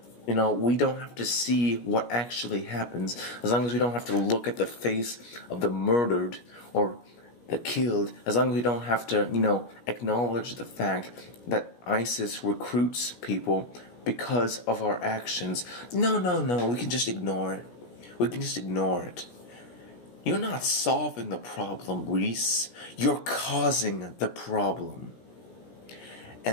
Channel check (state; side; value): late; right; 17 ms